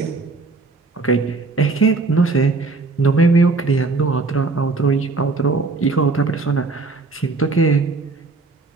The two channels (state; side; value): quieter; left; 3.8 dB